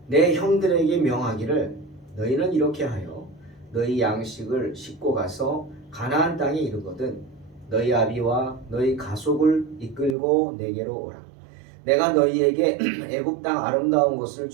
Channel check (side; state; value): left; drops out; at 10.2 s